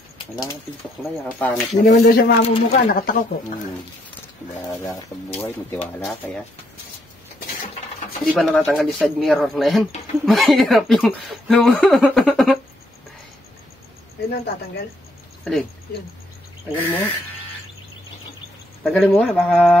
Wala ka tintuklay, kapangit. Hindi naman daw siya mamumuka, nakatakok ko. Wala ka sa buhay, may tiwala kaya. Hindi ba natatanggal yung side mirror na yan? Mahirap yung... Ayun ang tatanggal. Alin? Yun. Tanggalin mo. Tanggalin mo nga, baka...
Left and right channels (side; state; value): both; normal; correlation 0.73